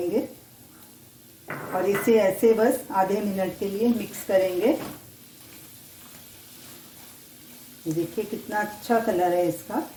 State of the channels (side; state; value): both; identical; correlation 1.00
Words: और इसे ऐसे बस आधे मिनट के लिए मिक्स करेंगे। ये देखिए कितना अच्छा कलर है इसका